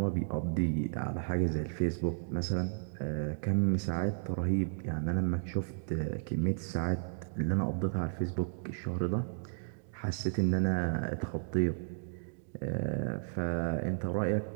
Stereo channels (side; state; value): left; silent; digital silence